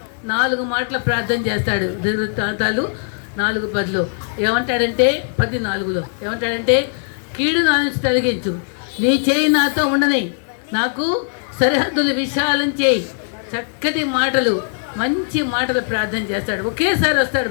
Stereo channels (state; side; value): silent; right; 66 dB below the other